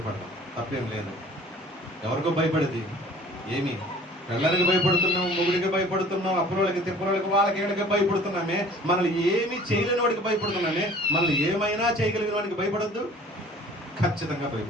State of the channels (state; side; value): normal; both; correlation 0.49